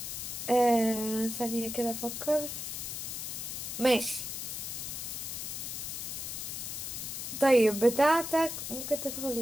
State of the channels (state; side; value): noise; left; hiss, 5 dB below the sound